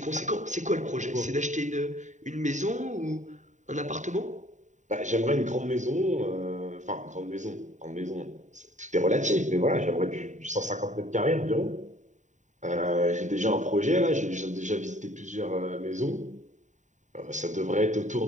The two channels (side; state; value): left; late; 0.35 ms